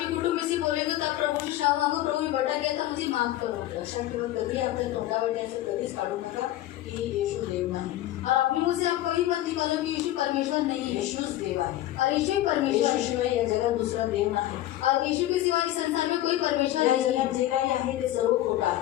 कुटुंब में से बोलेंगे, तो आप प्रभु से क्षमा मांगो, प्रभु मैं भटक गया था, मुझे माफ करो. लक्षात ठेवा, कधी आपल्या तोंडावर याचं कधीच काढू नका की येशू देव नाही. और अपने मुंह से आप कभी मत निकालो कि यीशु परमेश्वर नहीं है, येशूच देव आहे. और यीशु ही परमेश्वर है. येशूशिवाय या जगात दुसरा देव नाही. और यीशु के सिवा इस संसार में कोई परमेश्वर या नहीं जगात है, जे काही आहे ते सर्व खोटं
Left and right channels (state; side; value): quieter; right; 14.4 dB